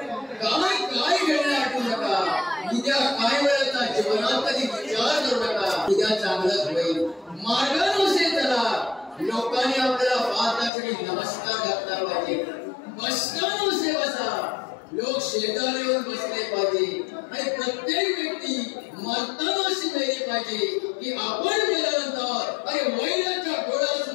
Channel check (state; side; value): drops out; right; at 10.7 s